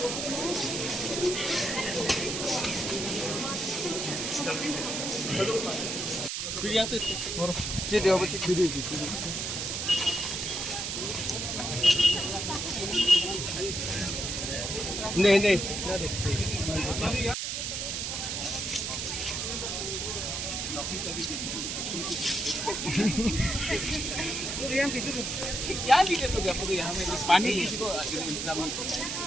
नहीं नहीं क्या दिक्कत हो गया आपको? यहाँ में पानी किसी को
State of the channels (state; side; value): noise; right; hiss, 2 dB below the sound